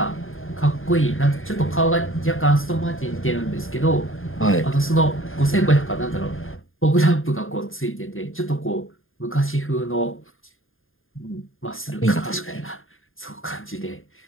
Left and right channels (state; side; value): late; right; 0.59 ms